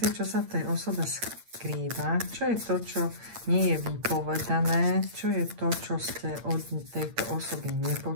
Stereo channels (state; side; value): late; left; 8.7 ms